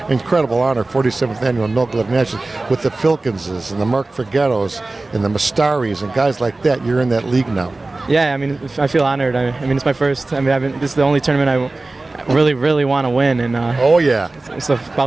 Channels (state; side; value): quieter; left; 3.2 dB